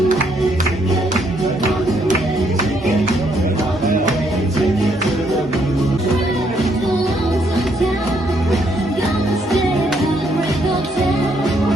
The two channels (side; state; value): both; normal; correlation 0.72